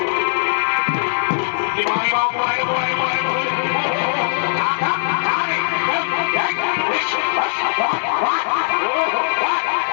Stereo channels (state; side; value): silent; right; digital silence